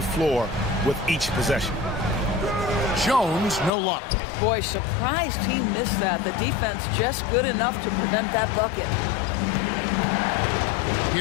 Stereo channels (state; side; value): drops out; right; at 3.7 s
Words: floor with each possession. Jones, no luck. Boy, surprised he missed that. The defense just good enough to prevent that bucket.